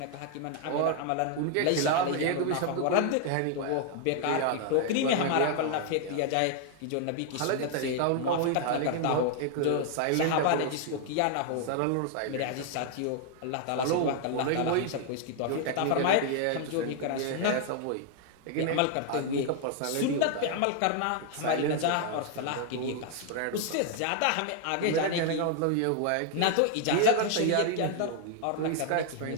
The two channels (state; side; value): different; both; correlation 0.00